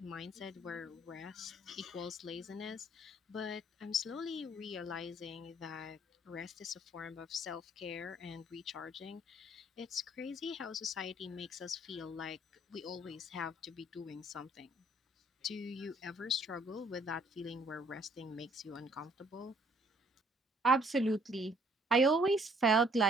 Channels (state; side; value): normal; both; correlation 0.62